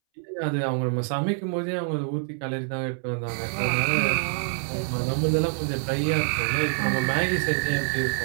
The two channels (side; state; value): left; silent; 61 dB below the other